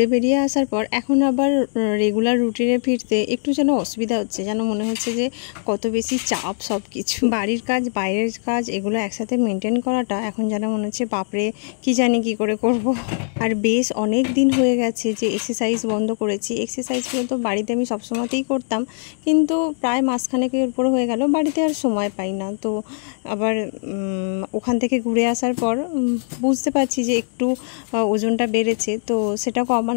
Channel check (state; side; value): silent; right; digital silence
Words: বেরিয়ে আসার পর এখন আবার রেগুলার রুটিনে ফিরতে একটু যেন অসুবিধা হচ্ছে, যেন মনে হচ্ছে যে কত বেশি চাপ সব কিছু, বাড়ির কাজ বাইরের কাজ এগুলো একসাথে মেনটেন করাটা এখন যেন মনে হচ্ছে বাপরে কি জানি কি করে করব। আর বেশ অনেক দিন হয়ে গেছে যে এক্সারসাইজ বন্ধ করেছি। এক্সারসাইজগুলো তো বাড়িতে আমি সবসময়তেই করতাম, কিন্তু প্রায় মাসখানেকের উপর হয়ে গেল বাড়িতে আর সময় পাই না। তো আবার ওখান থেকে ঘুরে আসার পর বুঝতে পারছি যে একটু ওজনটা বেড়েছে, তো সেটা